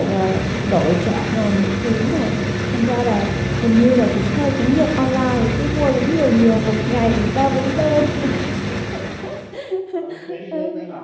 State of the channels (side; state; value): both; identical; correlation 1.00